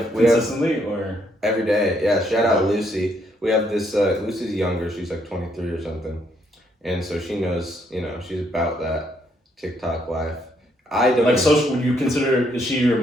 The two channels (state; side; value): normal; both; correlation 0.72